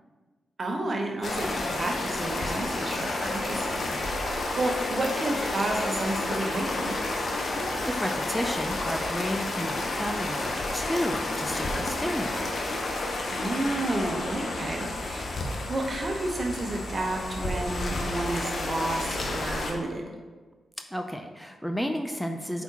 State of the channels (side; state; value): both; normal; correlation 0.87